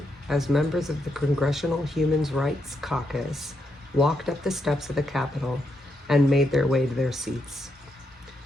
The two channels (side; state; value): both; normal; correlation 0.81